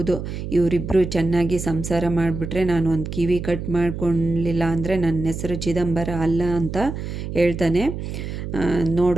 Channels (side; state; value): right; noise; hum, 6 dB below the sound